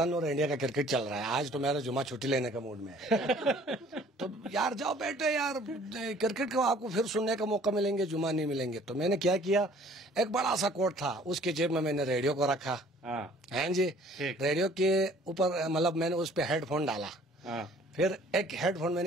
اور انڈیا کا کرکٹ چل رہا ہے، آج تو میرا جمعہ چھٹی لینے کا موڈ میں ہے. تو یار جاؤ بیٹے، یار کرکٹ کو آپ کو پھر سننے کا موقع ملیں گے، جمعہ نہیں ملیں گے. تو میں نے کیا ایک بڑا سا کوٹ تھا، اس کے جیب میں نے ریڈیو کو رکھا. ہاں جی، ریڈیو کے اوپر مطلب میں نے اس پہ ہیڈ فون ڈالا، پھر ایک ہیڈ فون میں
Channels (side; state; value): both; normal; correlation 0.55